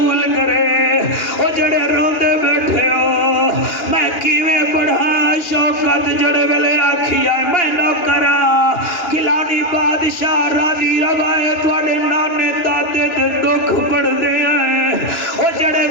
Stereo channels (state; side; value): late; right; 2.8 ms